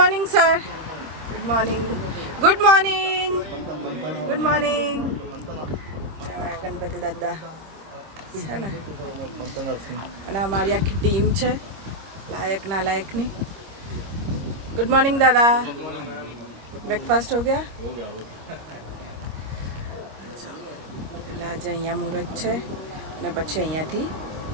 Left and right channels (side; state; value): left; late; 25 ms